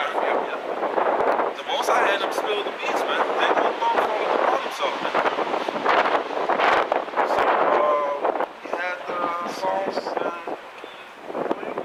The most I had him spill the beans, man. They don't fall upon himself, man. So we had songs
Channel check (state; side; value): identical; both; correlation 1.00